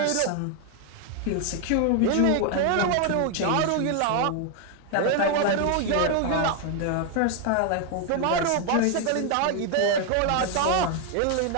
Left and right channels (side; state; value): both; different; correlation 0.01